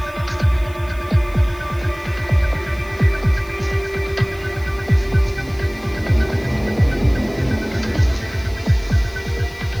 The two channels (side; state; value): left; noise; hiss, 24 dB below the sound